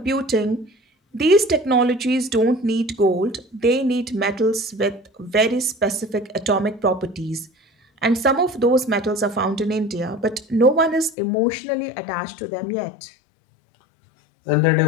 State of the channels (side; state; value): right; drops out; at 11.2 s